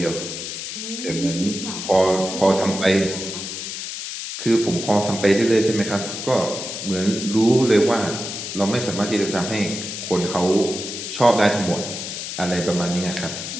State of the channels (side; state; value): left; noise; hiss, 7 dB below the sound